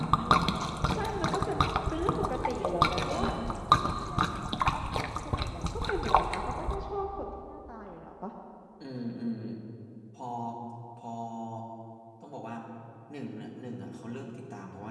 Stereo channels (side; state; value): both; identical; correlation 1.00